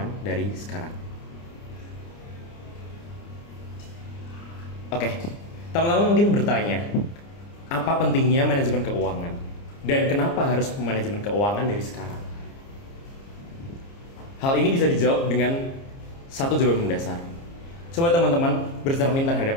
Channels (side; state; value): right; late; 30 ms